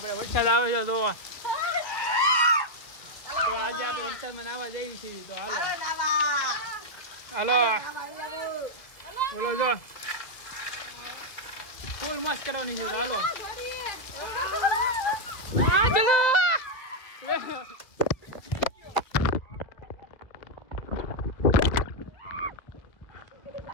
વરસાદ આવે છે તો આજે આપણે વરસાદમાં નાવા જઈએ છીએ તો હાલો બોલો જો ફૂલ મસ્ત કરવાની છે તો હાલો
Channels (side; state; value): right; late; 1.8 ms